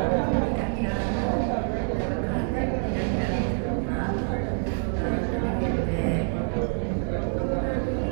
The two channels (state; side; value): silent; left; 56 dB below the other